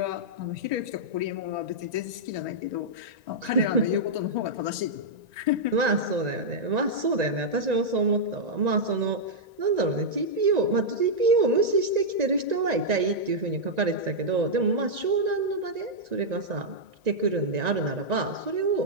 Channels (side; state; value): left; late; 1.9 ms